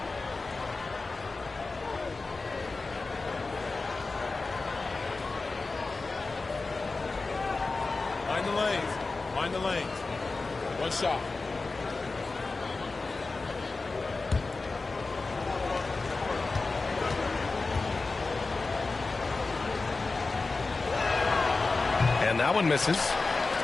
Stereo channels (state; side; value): quieter; right; 3.7 dB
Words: Mind the lanes. One shot. And that one misses.